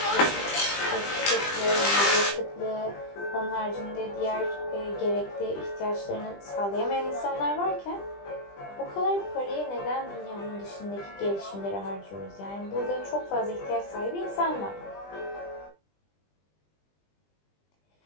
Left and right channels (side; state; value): right; late; 20 ms